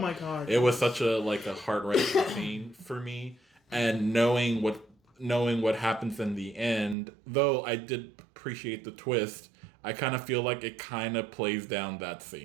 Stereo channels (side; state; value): left; drops out; at 7.0 s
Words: god. It was such a heart-wrenching scene for me, and knowing what happens in the end, though I did appreciate the twist, I kind of feel like it kind of plays down that